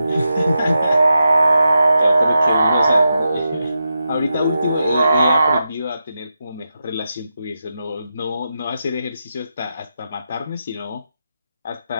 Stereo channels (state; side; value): inverted; both; correlation -0.88